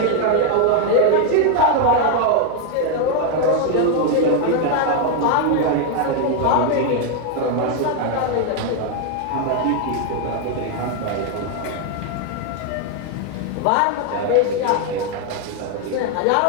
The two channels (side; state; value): both; different; correlation 0.01